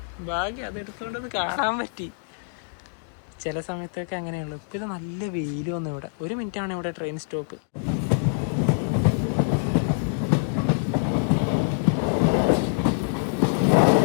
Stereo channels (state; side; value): silent; right; digital silence